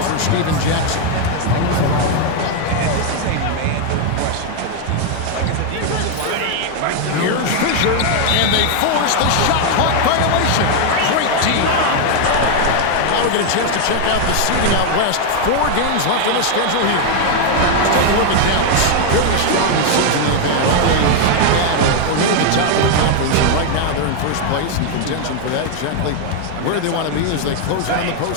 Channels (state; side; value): different; both; correlation 0.01